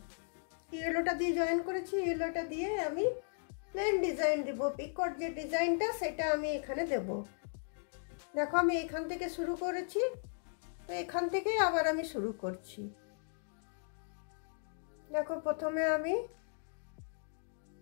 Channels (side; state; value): right; silent; digital silence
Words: ইয়েলোটা দিয়ে জয়েন করেছি, ইয়েলোটা দিয়ে আমি প্লেন ডিজাইন দেব। পিকট যে ডিজাইনটা সেটা আমি এখানে দেব। দেখো আমি এখান থেকে শুরু করেছি, তো এখান থেকে আবার আমি শুরু করছি। দেখো প্রথমে আমি